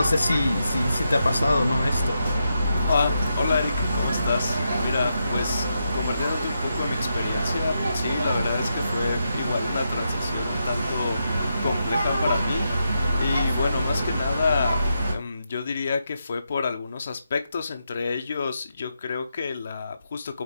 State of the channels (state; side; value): inverted; both; correlation -0.84